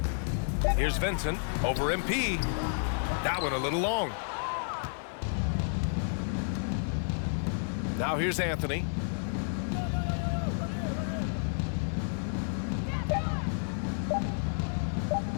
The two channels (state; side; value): silent; right; 56 dB below the other